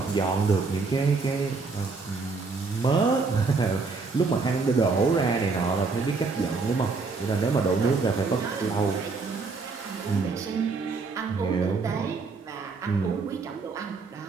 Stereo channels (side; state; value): left; quieter; 4.2 dB